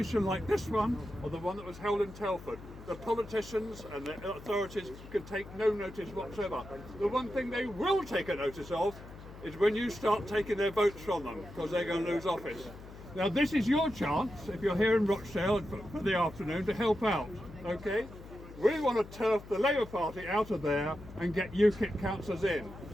like this one or the one that was held in Telford, the politicians and the authorities could take no notice whatsoever. The one thing they will take a notice of is when you start taking their votes from them, because they're going to lose office. Now this is your chance, if you're here in Rochdale for the afternoon, to help out, okay? We want to turf the Labour Party out of there and get UKIP councillors in.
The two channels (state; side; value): noise; left; hum, 16 dB below the sound